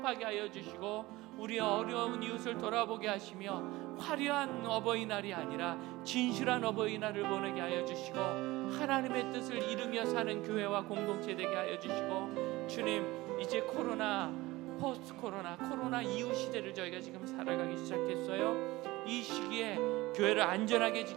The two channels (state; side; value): quieter; left; 19.6 dB